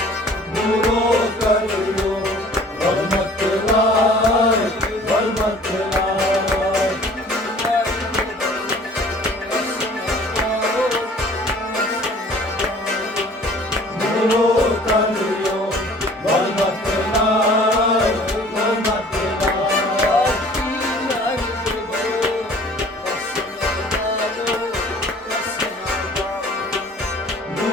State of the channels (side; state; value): both; normal; correlation 0.50